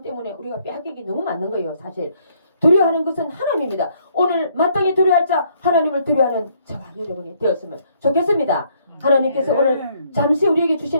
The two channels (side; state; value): both; inverted; correlation -0.67